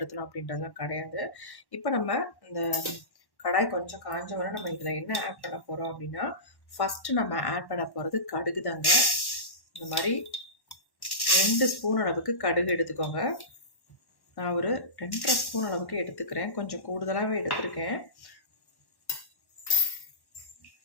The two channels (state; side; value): late; right; 1.1 ms